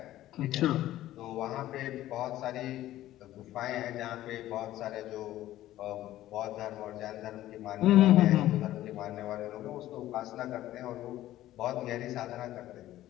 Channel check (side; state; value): right; quieter; 14.3 dB